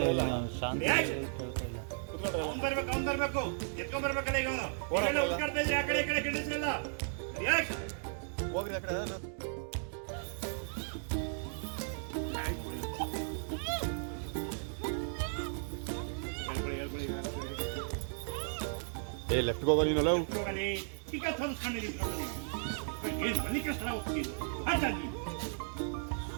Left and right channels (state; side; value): silent; left; digital silence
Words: ಅವ್ನು ಬರ್ಬೇಕು ಎತ್ಕೊಂಡ್ ಬರ್ಬೇಕಲ್ಲ ಈಗ ಅವನು ಉಳ್ಕಾಡ್ತಾ ಇದ್ರೆ ಆ ಕಡೆ ಈ ಕಡೆ ಗಿಡಿಸ್ರಲ್ಲ. ಹೋಗ್ರಿ ಆ ಕಡೆ ಏ ಲೆಫ್ಟ್ ಹೋಗೋ ನೀನಲ್ಲ ಈಗ ಏನು ಮನೆ ಕಷ್ಟ ಹೋಗ್ತೀನಿ ಹಾಗಾಗಿ